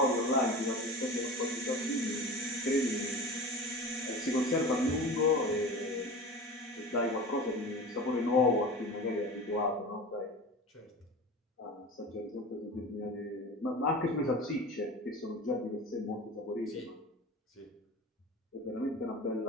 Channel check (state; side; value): normal; both; correlation 0.33